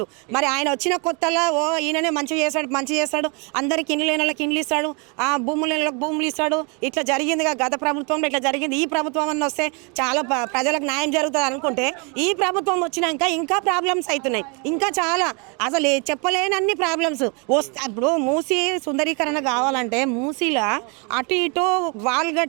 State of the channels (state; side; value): quieter; left; 33.2 dB